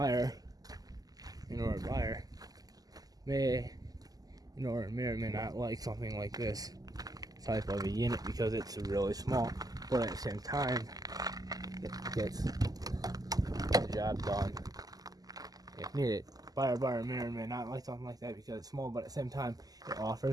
may or may not like something like this type of a unit because it's really small, but at the same time it gets the job done if needed. Buyer may or may not like something like that because it's small, but at the same time it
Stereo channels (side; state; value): left; late; 0.18 ms